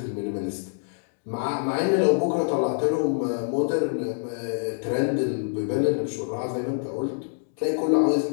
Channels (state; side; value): silent; right; digital silence